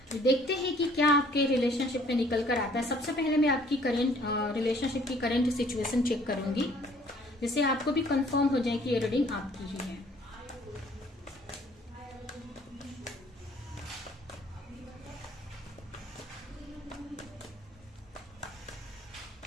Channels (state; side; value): normal; both; correlation 0.58